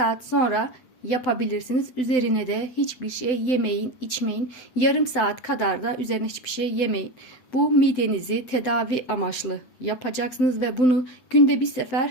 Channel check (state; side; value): late; right; 7.9 ms